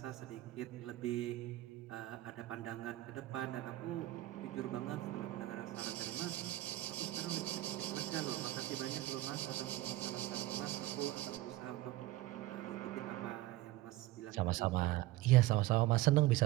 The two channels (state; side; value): quieter; left; 16.9 dB